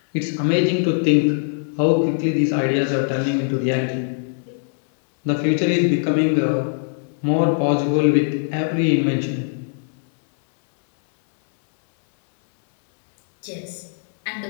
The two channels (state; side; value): silent; right; 62 dB below the other